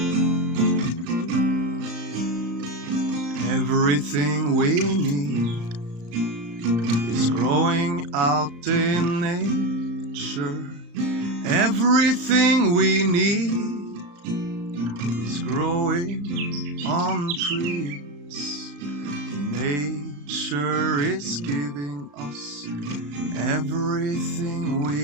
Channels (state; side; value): late; left; 34 ms